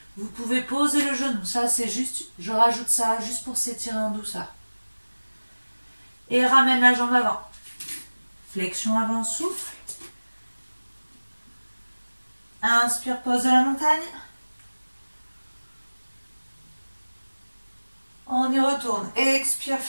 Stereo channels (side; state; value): both; inverted; correlation -1.00